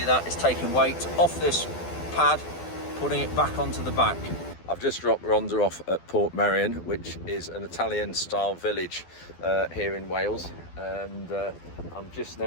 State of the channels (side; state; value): right; late; 12 ms